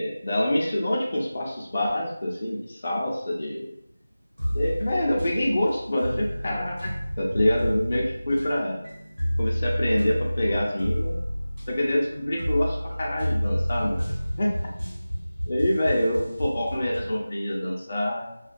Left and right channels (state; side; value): inverted; both; correlation -0.96